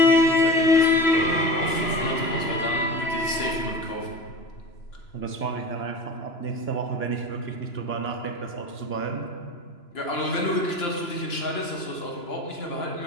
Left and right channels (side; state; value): right; late; 2.9 ms